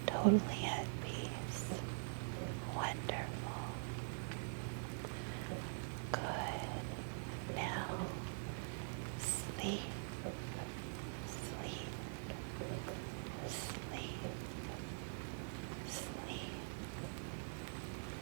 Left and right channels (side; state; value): left; silent; digital silence